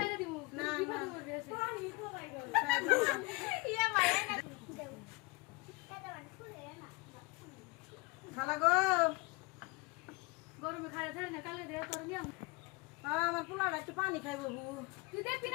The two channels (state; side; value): quieter; right; 26.0 dB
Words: না না পানি তো ভাই গো ইয়া মায়া খালা গো গরমে খাইতে না কালে দে তোর নিয়ম আমার পোলাটা একটু পানি খাইবো বউ তুই দেখবি